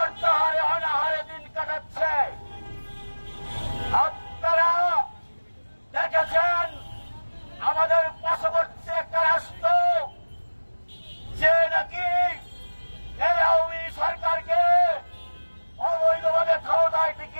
অনাহারে দিন কাটাচ্ছে। আপনারা দেখেছেন আমাদের পার্শ্ববর্তী একটা রাষ্ট্র যে নাকি এই আওয়ামী সরকারকে অবৈধভাবে ক্ষমতায়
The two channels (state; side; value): inverted; both; correlation -1.00